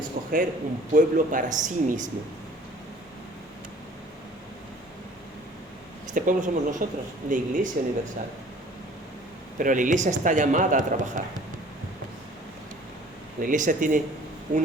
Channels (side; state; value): both; normal; correlation 0.51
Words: un pueblo para sí mismo. Este pueblo somos nosotros, la Iglesia Universal. Pero la Iglesia está llamada a trabajar. La Iglesia tiene